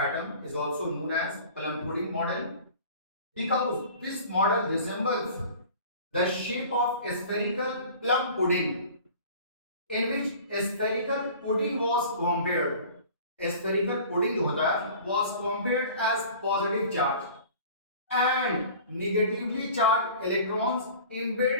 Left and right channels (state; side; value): inverted; both; correlation -0.43